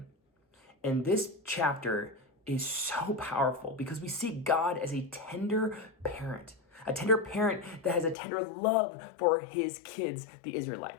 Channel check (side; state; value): right; drops out; at 8.2 s